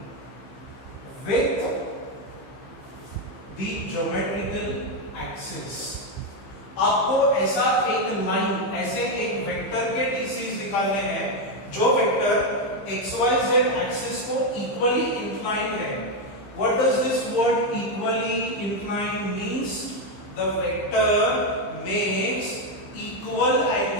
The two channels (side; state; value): right; late; 15 ms